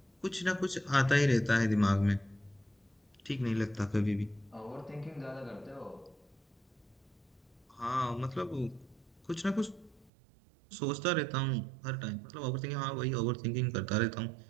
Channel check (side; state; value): left; drops out; at 10.1 s